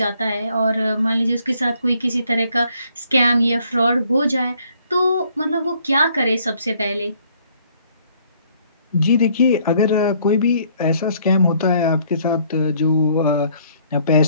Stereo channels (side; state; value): both; inverted; correlation -0.64